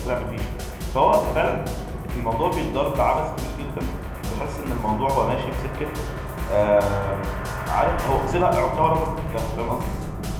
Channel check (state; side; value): identical; both; correlation 1.00